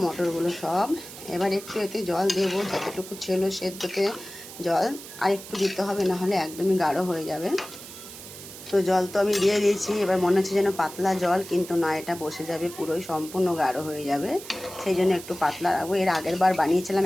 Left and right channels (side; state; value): right; noise; hiss, 14 dB below the sound